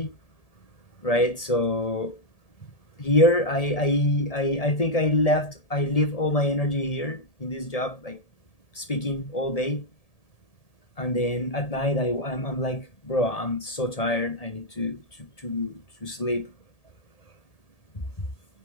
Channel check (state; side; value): late; right; 1.7 ms